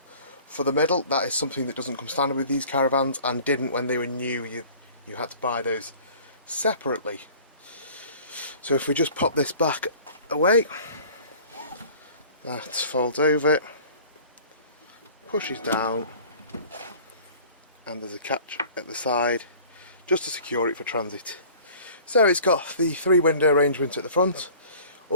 for the middle. That is something that doesn't come standard with these caravans, and didn't when they were new. You had to buy those separately. So if we just pop this back away, that folds over, pushes down, and there's a catch at the side just to secure it for transit. So it's got the 3 window arrangement at the front.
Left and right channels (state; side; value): inverted; both; correlation -0.47